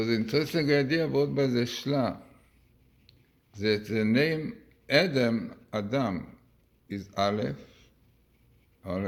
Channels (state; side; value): identical; both; correlation 1.00